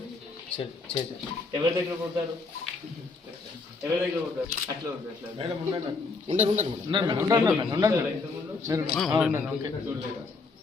ఎవరి దగ్గర కొడతారు? ఎవరి దగ్గర కొడతారు? అట్లా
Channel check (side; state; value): right; quieter; 4.0 dB